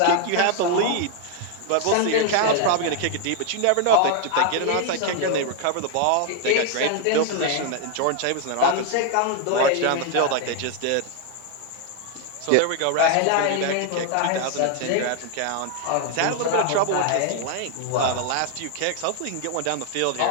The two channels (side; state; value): both; different; correlation 0.00